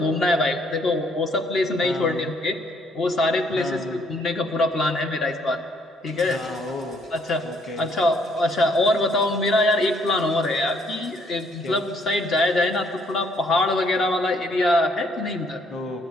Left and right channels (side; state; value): both; normal; correlation 0.66